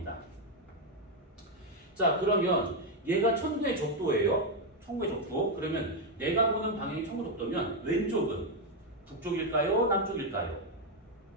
자, 그러면 얘가 천구의 적도예요. 천구의 적도. 그러면 내가 보는 방향이 천구 적도면 왼쪽은 북쪽일까요? 남쪽일까요?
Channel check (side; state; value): both; normal; correlation 0.03